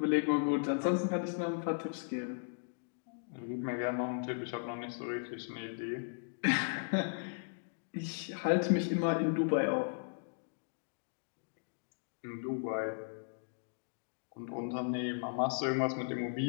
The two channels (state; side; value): silent; right; digital silence